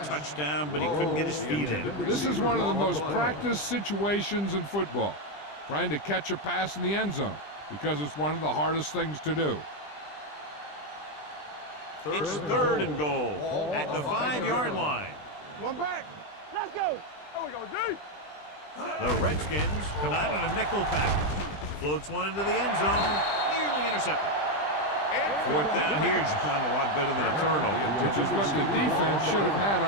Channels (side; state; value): right; late; 20 ms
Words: touchdown, but he couldn't get his feet in. This is one of the most practiced situations in football, trying to catch a pass in the end zone, because it's one of the hardest things to do. It's 3rd and goal at the 5-yard line. One back. Let's go. There we go, D. The Redskins come out in a nickel package. Floats one into the end zone, nearly intercepted. 4th down here, John, a lot better than a turnover. Which is what the defense should have had